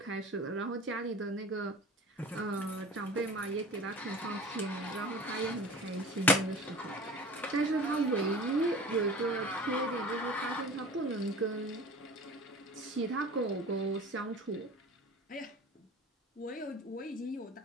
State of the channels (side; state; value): both; normal; correlation 0.40